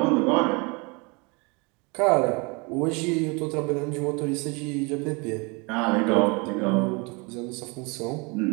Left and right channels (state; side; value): quieter; left; 29.5 dB